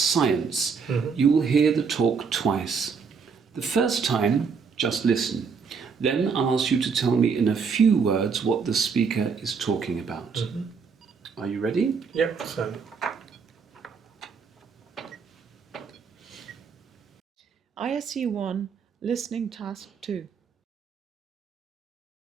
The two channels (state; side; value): quieter; left; 5.6 dB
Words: Mm-hmm. You will hear the talk twice. The first time, just listen. Then I'll ask you to tell me in a few words what the speaker is talking about. Mm-hmm. Are you ready? Yep, son. ISE I Listening Task 2.